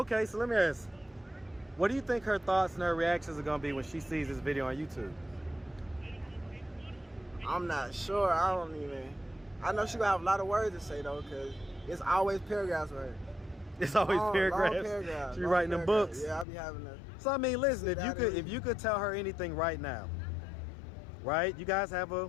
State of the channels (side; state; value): right; drops out; at 16.4 s